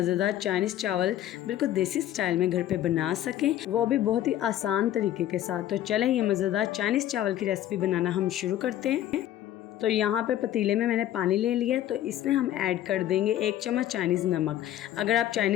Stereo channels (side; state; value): right; quieter; 12.4 dB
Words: चाइनीज़ चावल बिल्कुल देसी स्टाइल में घर पे बना सकें, वो भी बहुत ही आसान तरीके के साथ। तो चलें ये मज़ेदार चाइनीज़ चावल की रेसिपी बनाना हम शुरू करते हैं। तो यहाँ पे पतीले में मैंने पानी ले लिया, तो इसमें हम ऐड कर देंगे 1 चम्मच चाइनीज़ नमक। अगर आप